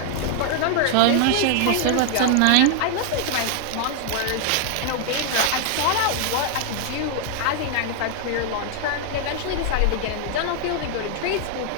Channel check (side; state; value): both; different; correlation 0.00